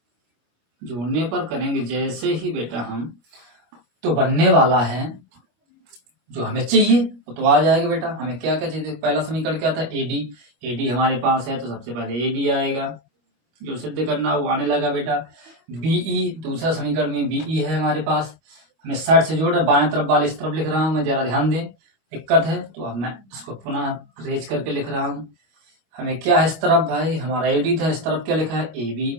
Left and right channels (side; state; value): left; late; 25 ms